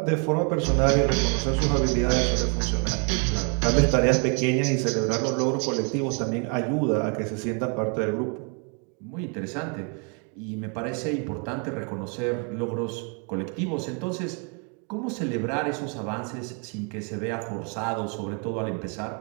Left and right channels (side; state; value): left; quieter; 37.2 dB